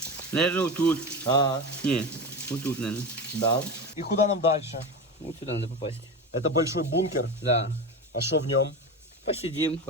Наверное, вот тут. Не, вот тут, наверное. Да. И куда нам дальше? Вот сюда надо попасть. Это большой бункер. Да. А что в нем? Посидим,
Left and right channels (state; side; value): normal; both; correlation 0.24